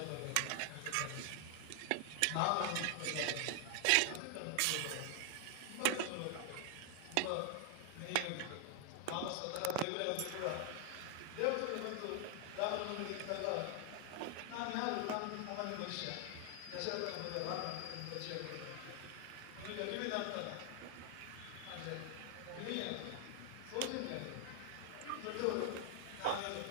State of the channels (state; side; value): different; both; correlation 0.00